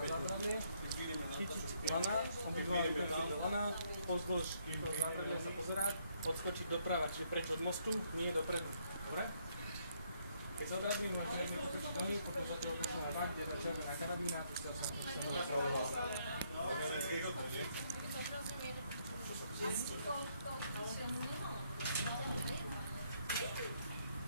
zábradlie, chytiť lana, obidva ruky do lana, pozdĺž zábradlie sa pozerať, odskočiť doprava, čiže preč od mostu, nie dopredu. Dobre? Keď sa odradím, máš riadne potočiť nohy, potom sa toho pošleme bak, kde je červená karabína, pustil sa napravoval.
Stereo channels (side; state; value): both; inverted; correlation -0.71